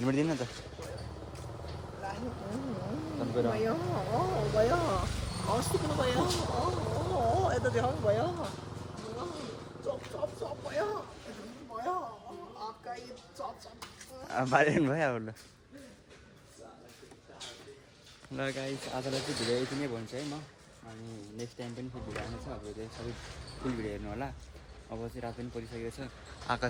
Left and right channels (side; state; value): both; identical; correlation 1.00